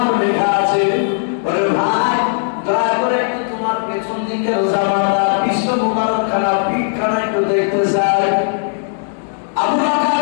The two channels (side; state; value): right; silent; 68 dB below the other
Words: লেখা আছে। ওরে ভাই দয়া করে একটু তোমার পেছন দিকের জামাটা বিশ্ব মুবারক খানা পিঠ খানা একটু দেখতে চাই। আবু